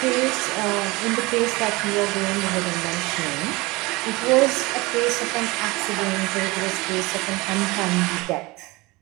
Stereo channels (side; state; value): left; quieter; 23.1 dB